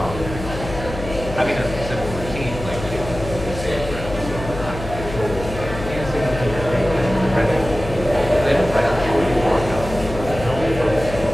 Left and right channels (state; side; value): noise; left; hum, 9 dB below the sound